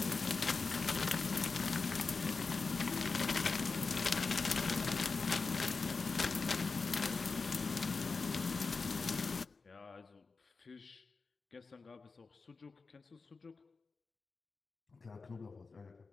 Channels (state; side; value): quieter; right; 4.3 dB